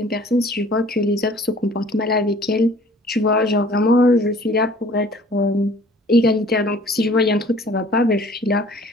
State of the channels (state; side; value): normal; both; correlation 0.52